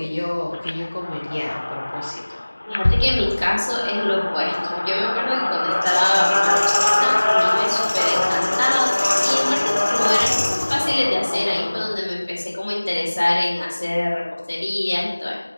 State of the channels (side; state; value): both; inverted; correlation -1.00